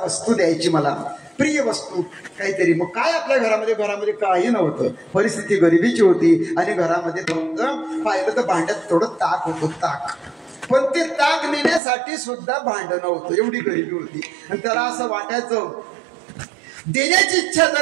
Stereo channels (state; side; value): drops out; left; at 11.8 s